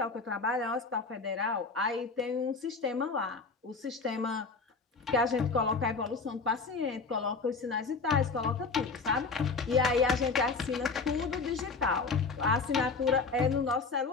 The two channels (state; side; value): quieter; right; 4.4 dB